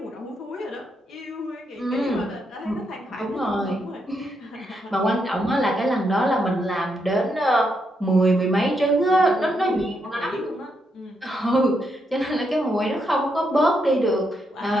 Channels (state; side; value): normal; both; correlation 0.80